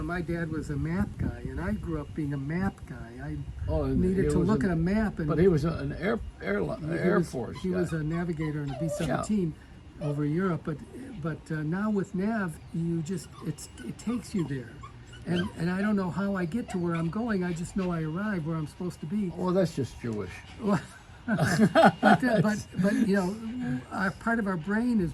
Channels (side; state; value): both; identical; correlation 1.00